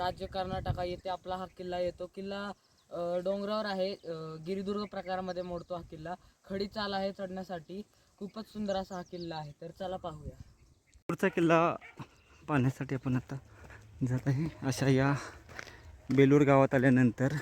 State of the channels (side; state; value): both; identical; correlation 1.00